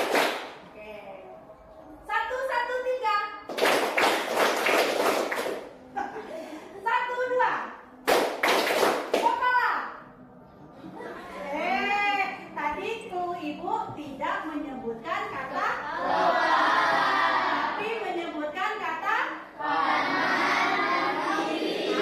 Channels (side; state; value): both; identical; correlation 1.00